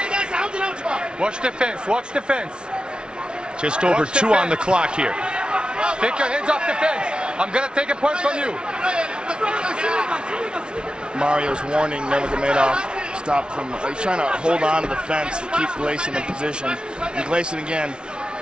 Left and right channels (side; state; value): left; late; 0.056 ms